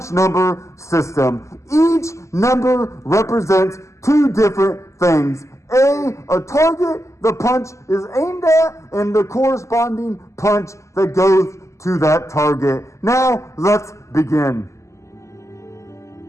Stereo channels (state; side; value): late; right; 0.14 ms